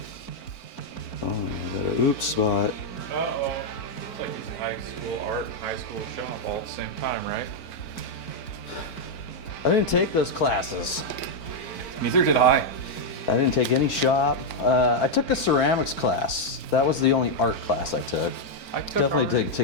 Oh, I got an oops spot. uh-oh. It's like using high school art and high school shop all at the same time, right? I didn't take those classes. Neither did I. I didn't take any shop. I took a ceramics class. That was the only art class I took. I took Definitely art. didn't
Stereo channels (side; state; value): right; late; 4.5 ms